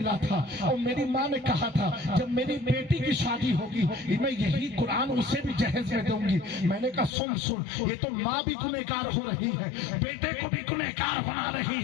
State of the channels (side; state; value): right; drops out; at 7.1 s